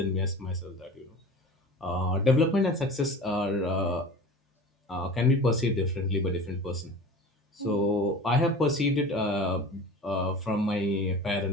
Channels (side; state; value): both; normal; correlation 0.37